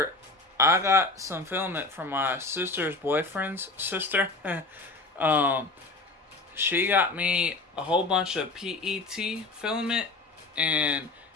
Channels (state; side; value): quieter; right; 3.3 dB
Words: I got some filament from my sister's boyfriend's sister. She got me a whole bunch of PET filament, and